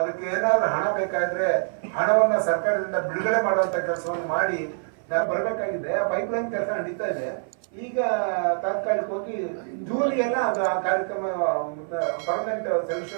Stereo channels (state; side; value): silent; left; 56 dB below the other